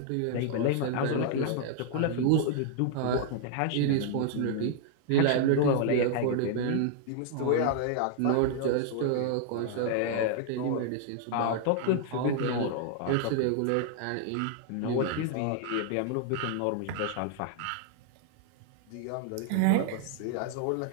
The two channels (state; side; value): different; both; correlation -0.01